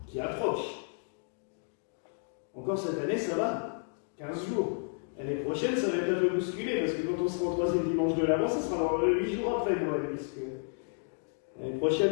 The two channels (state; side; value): silent; right; 57 dB below the other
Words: qui approche. Encore cette année, ça va, 15 jours. L'année prochaine, ça va être un peu bousculé, parce que quand on sera au troisième dimanche de l'Avent, ça sera dans 8 jours après Noël, puisque l'année